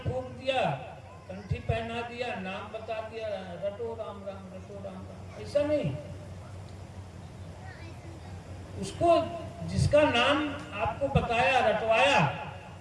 दिया, कंठी पहना दिया, नाम बता दिया, रटो राम राम, रटो राम राम, ऐसा नहीं। उसको जिसका नाम आपको बताया, रटवाया,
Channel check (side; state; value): both; identical; correlation 1.00